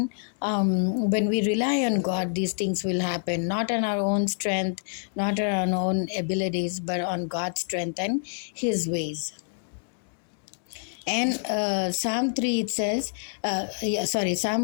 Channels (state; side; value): silent; right; digital silence